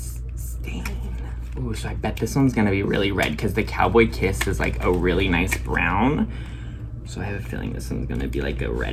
stain. Ooh, so I bet this one's gonna be really red because the Cowboy Kiss is like a really nice brown. So I have a feeling this one's gonna be like a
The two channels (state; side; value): identical; both; correlation 1.00